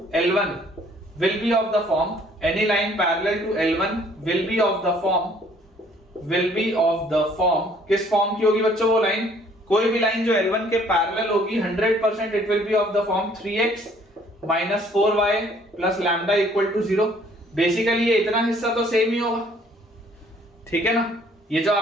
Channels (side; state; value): both; normal; correlation 0.60